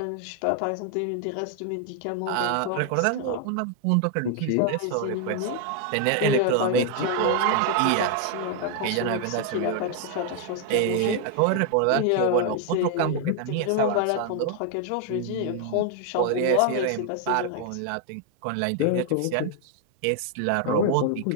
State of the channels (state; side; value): different; both; correlation 0.00